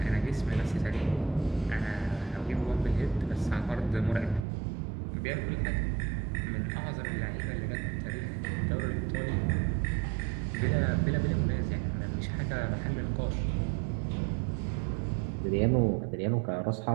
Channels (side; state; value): left; drops out; at 4.5 s